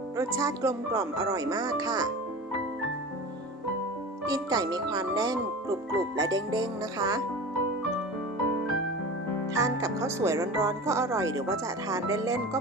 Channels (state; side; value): normal; both; correlation 0.33